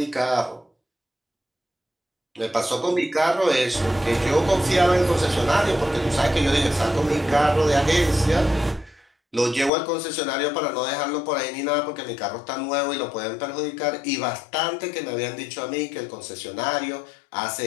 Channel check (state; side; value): drops out; right; at 9.7 s